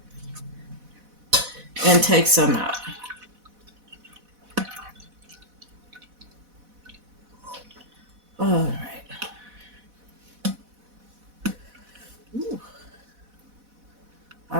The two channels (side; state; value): left; late; 4.1 ms